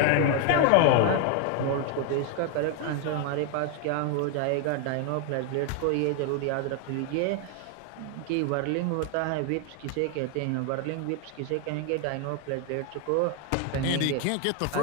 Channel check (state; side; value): different; both; correlation 0.00